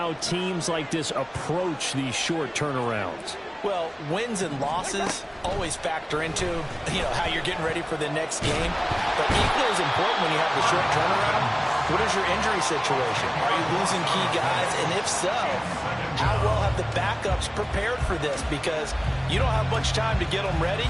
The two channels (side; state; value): both; identical; correlation 1.00